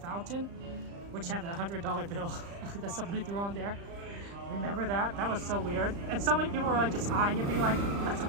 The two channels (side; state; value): left; late; 35 ms